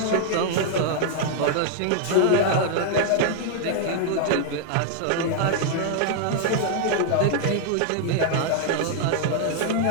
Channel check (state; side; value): different; both; correlation -0.01